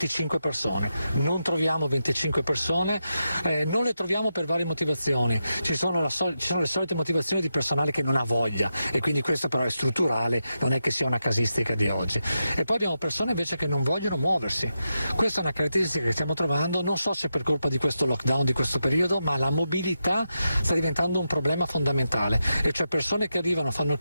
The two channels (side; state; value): both; inverted; correlation -0.87